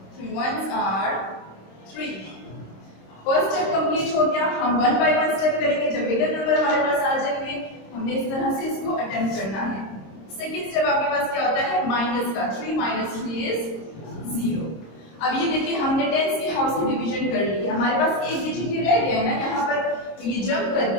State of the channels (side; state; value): right; late; 26 ms